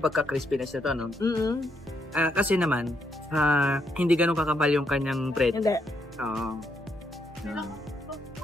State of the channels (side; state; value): both; normal; correlation 0.77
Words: pagka-crispiness nito, no? Mm-hmm. Kasi naman, hindi ganun kakapal yung kanyang bread. Hindi. Oo.